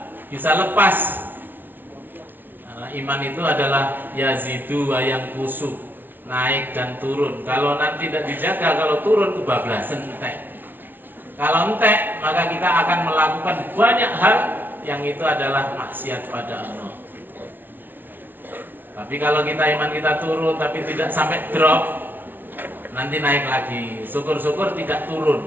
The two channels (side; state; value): left; late; 0.092 ms